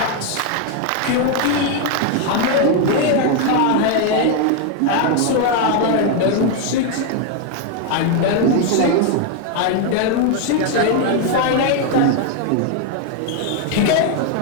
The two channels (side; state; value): both; different; correlation 0.01